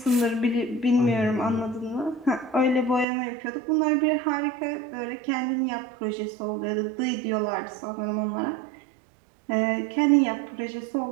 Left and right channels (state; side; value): drops out; left; at 3.1 s